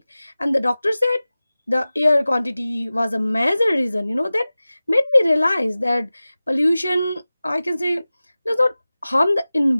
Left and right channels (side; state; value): both; inverted; correlation -0.97